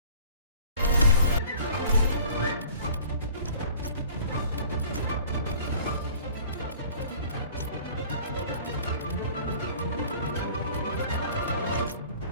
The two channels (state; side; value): inverted; both; correlation -0.49